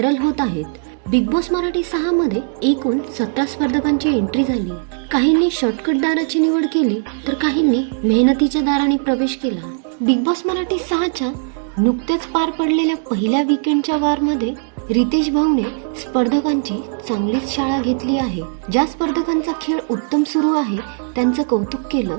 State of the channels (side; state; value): left; silent; digital silence